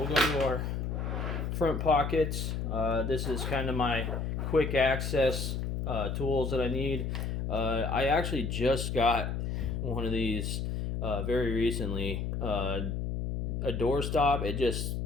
go to our front pockets. This is kind of my quick access tools that I need. I actually just got one of these very recently. A door stop.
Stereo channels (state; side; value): noise; left; hum, 2 dB below the sound